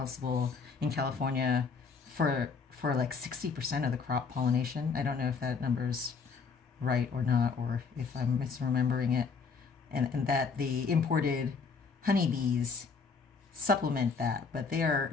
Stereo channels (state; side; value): quieter; right; 5.3 dB